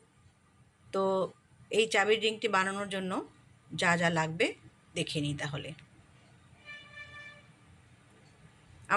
তো এই চাবির রিংটি বানানোর জন্য যা যা লাগবে দেখে নিই তাহলে।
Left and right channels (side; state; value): both; identical; correlation 1.00